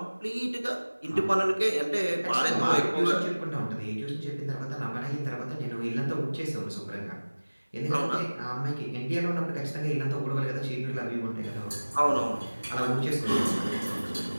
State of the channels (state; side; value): inverted; both; correlation -1.00